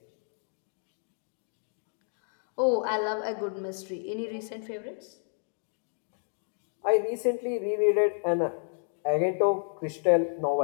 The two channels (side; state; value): right; silent; 55 dB below the other